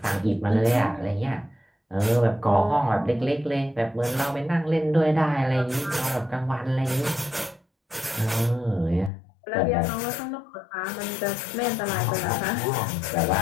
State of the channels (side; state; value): right; drops out; at 9.1 s